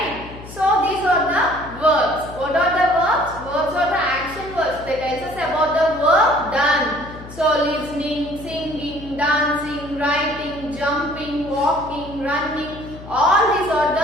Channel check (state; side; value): noise; left; hum, 15 dB below the sound